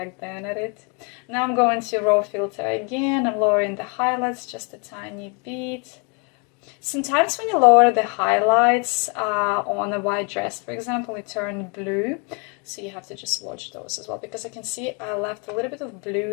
then at it. Now I'm going to raw filter again. I'm lowering the highlights just a tiny bit. Sometimes when you lower the highlights on a white dress, for example, it turned blue. So you have to just watch those as well, because I can see I left a little bit of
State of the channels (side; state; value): right; quieter; 34.7 dB